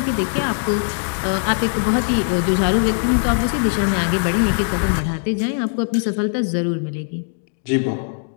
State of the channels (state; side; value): silent; right; 61 dB below the other